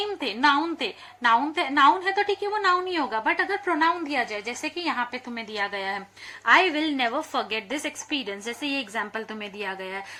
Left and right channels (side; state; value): both; identical; correlation 1.00